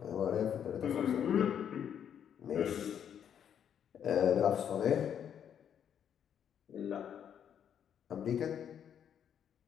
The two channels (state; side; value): quieter; right; 8.8 dB